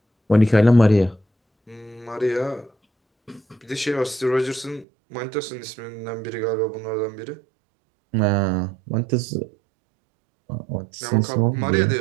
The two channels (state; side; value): drops out; left; at 4.9 s